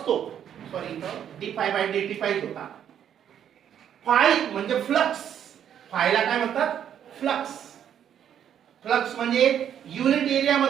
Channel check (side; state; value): left; quieter; 9.4 dB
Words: सॉरी इथं d phi by d t पाहिजे होता. फाय म्हणजे फ्लक्स. फायला काय म्हणतात? फ्लक्स. फ्लक्स म्हणजे युनिट एरिया